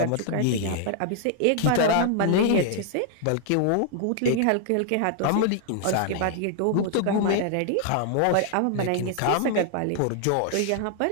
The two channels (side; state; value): both; different; correlation 0.00